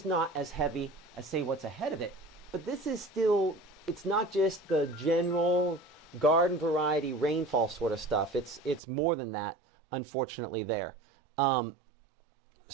not as heavy as, say, what's ahead of it, but this is still, it's not just the general garden variety rainfall sort of stuff. It's more than that, unfortunately, there.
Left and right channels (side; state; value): left; drops out; at 8.8 s